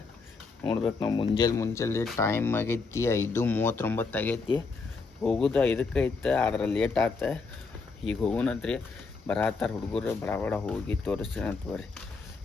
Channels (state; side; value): quieter; right; 4.3 dB